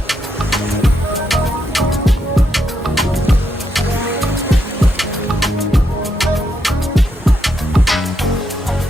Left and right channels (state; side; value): normal; both; correlation 0.80